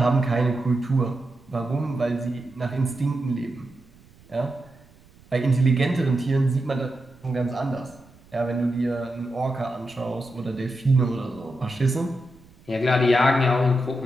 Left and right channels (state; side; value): noise; right; rumble, 26 dB below the sound